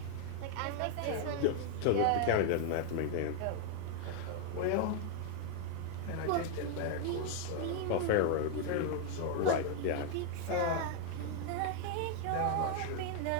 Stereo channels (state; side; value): different; both; correlation 0.00